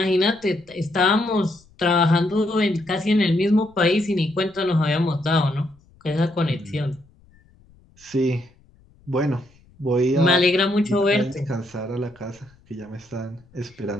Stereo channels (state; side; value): noise; left; rumble, 30 dB below the sound